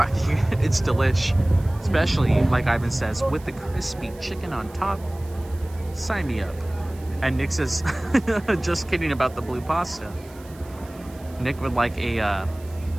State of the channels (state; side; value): noise; right; hiss, 24 dB below the sound